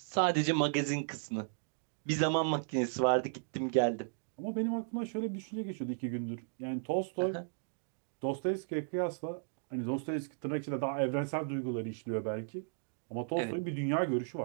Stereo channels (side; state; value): left; silent; digital silence